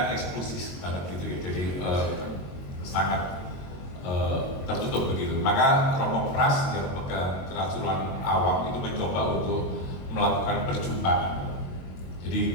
eksklusif banget gitu ya, jadi sangat tertutup begitu. Maka Romo Pras yang pegang kerasulan awam itu mencoba untuk melakukan perjumpaan.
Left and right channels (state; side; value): late; right; 22 ms